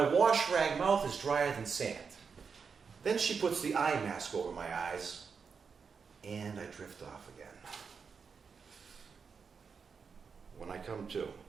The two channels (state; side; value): quieter; left; 5.7 dB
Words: wash rag mouth is drier than sand. Then she puts the eye mask over my eyes, and I drift off again. When I come to,